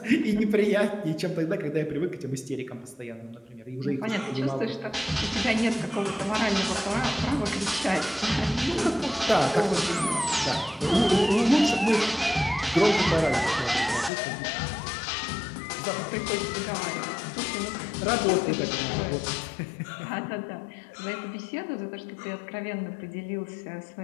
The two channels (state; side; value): drops out; right; at 14.1 s